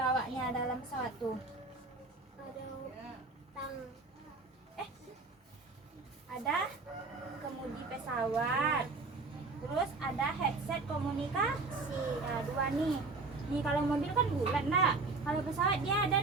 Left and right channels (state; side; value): quieter; left; 3.7 dB